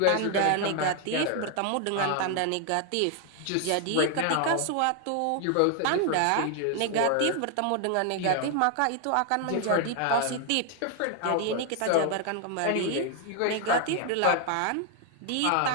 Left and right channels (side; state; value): both; different; correlation 0.00